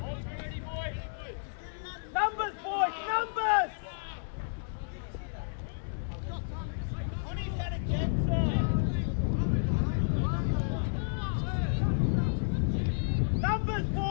Numbers, boys! Numbers! On his head again, sir! Numbers,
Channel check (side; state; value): right; silent; digital silence